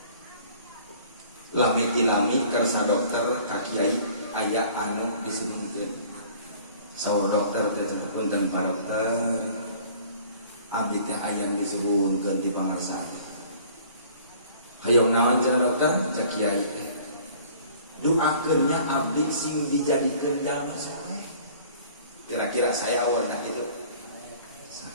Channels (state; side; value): inverted; both; correlation -0.51